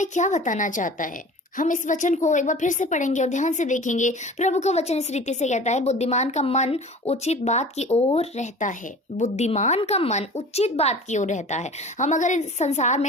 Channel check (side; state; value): both; normal; correlation 0.41